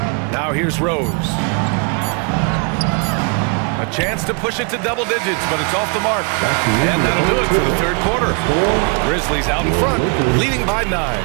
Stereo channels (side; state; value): left; quieter; 36.4 dB